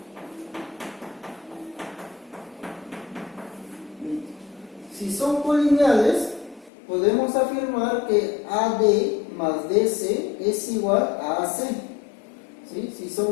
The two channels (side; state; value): right; drops out; at 6.7 s